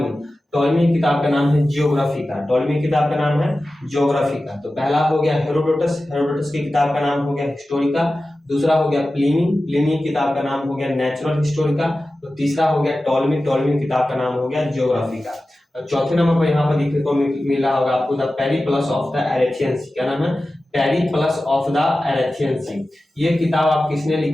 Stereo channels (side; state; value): both; normal; correlation 0.95